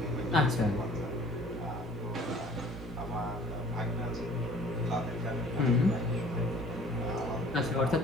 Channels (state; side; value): normal; both; correlation 0.51